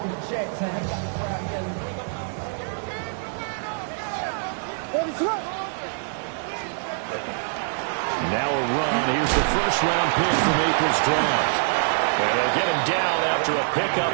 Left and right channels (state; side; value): silent; left; 62 dB below the other